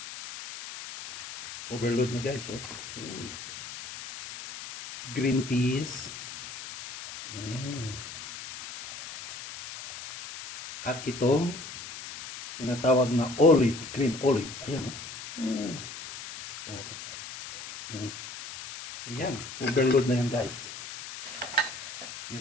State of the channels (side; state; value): left; noise; hiss, 11 dB below the sound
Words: Overload na guys. Oh. Uy. Green peas. At itong tinatawag na olive, green olive. Ayan. Ayan, overload na yan guys.